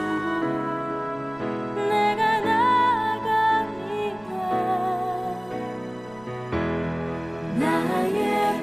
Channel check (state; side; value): noise; right; rumble, 25 dB below the sound